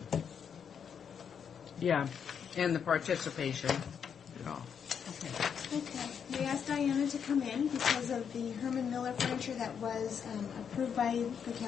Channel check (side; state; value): right; quieter; 7.4 dB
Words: Yeah, and the participation. yeah. Okay. We asked Diana to come in because of the Herman Miller furniture that was approved